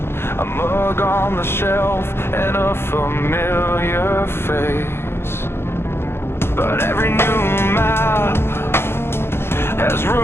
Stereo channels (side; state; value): right; late; 0.12 ms